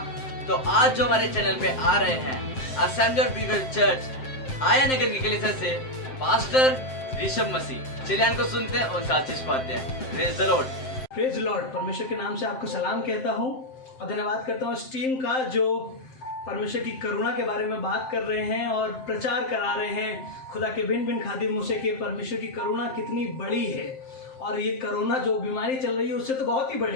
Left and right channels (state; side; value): late; right; 7.7 ms